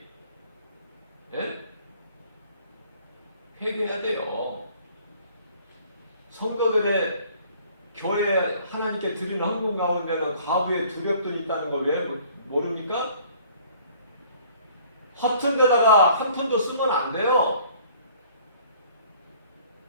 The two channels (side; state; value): both; inverted; correlation -0.55